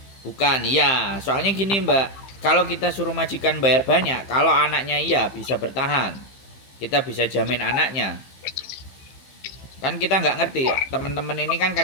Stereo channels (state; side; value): late; right; 15 ms